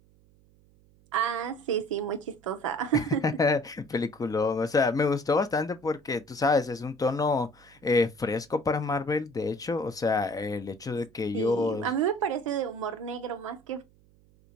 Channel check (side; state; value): right; noise; hum, 30 dB below the sound